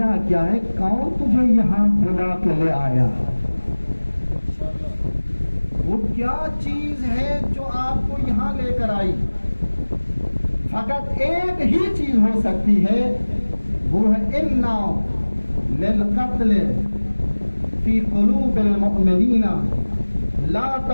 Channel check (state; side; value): inverted; both; correlation -1.00